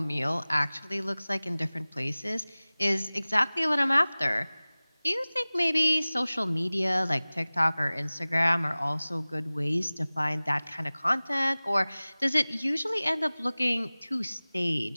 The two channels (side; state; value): both; inverted; correlation -0.99